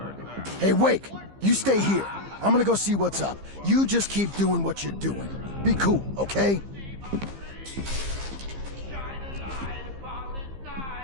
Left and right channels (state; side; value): late; left; 15 ms